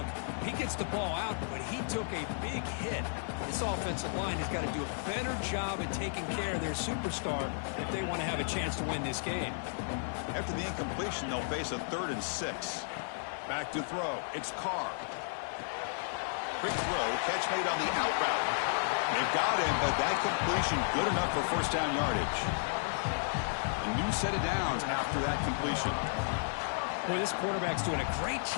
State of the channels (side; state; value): right; silent; 55 dB below the other